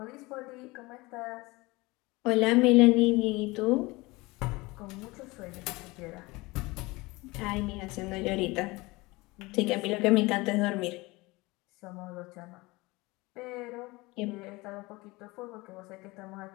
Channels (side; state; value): right; quieter; 22.7 dB